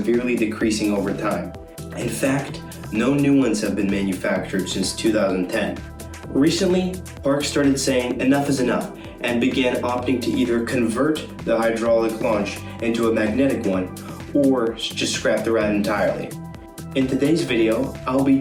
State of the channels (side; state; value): both; identical; correlation 1.00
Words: decreasing over time. In fact, no new ones have been manufactured since 2010. Recently, parks started saying enough is enough and began opting to either convert the hydraulic launch into a magnetic one or just scrap the ride entirely. In today's video, I'll be